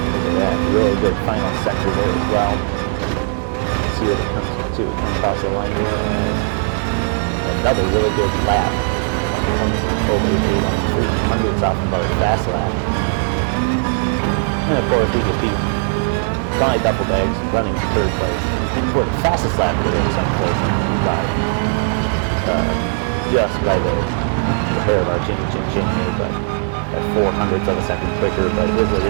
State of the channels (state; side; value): silent; left; digital silence